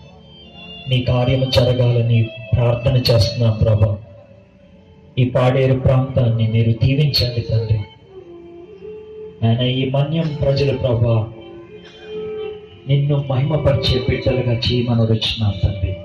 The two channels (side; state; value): both; identical; correlation 1.00